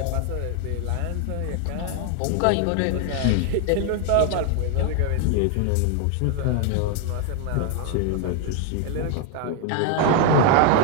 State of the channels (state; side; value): different; both; correlation 0.00